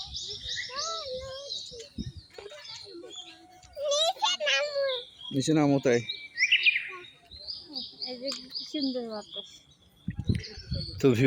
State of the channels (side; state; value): both; identical; correlation 1.00